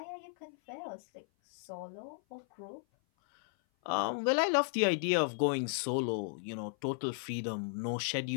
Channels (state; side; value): silent; right; 55 dB below the other